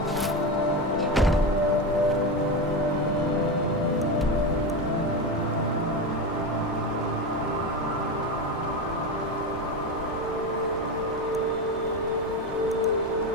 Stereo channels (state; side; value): normal; both; correlation 0.17